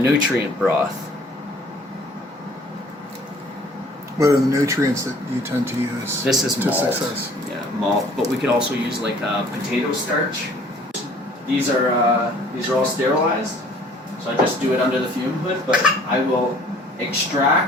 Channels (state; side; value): normal; both; correlation 0.54